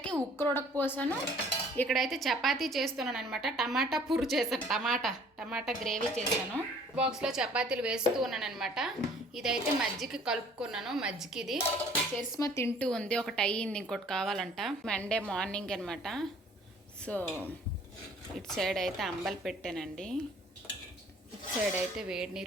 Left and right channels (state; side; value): normal; both; correlation 0.55